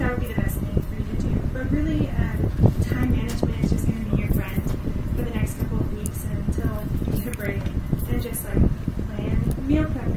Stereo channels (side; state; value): both; identical; correlation 1.00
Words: would be the best thing for you to do. But really, time management is just going to be your friend for the next couple of weeks until you get a break, and just like plan meal